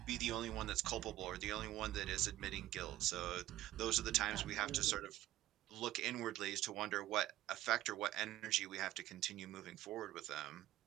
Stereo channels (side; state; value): left; quieter; 14.6 dB